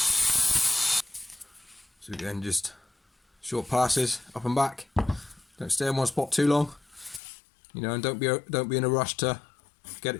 So again, just short passes up and back. Don't stay in one spot too long, you know, and don't be in a rush to get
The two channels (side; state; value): right; drops out; at 7.2 s